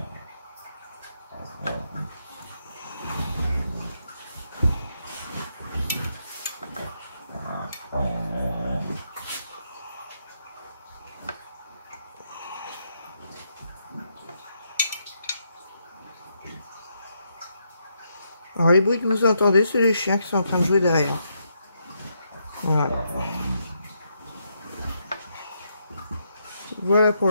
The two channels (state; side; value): inverted; both; correlation -0.79